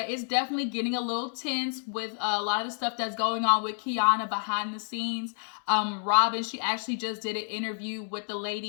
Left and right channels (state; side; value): silent; right; 58 dB below the other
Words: it's definitely getting a little tense with a lot of the stuff that's going on with Kiana behind the scenes. Robin, she actually just did an interview with the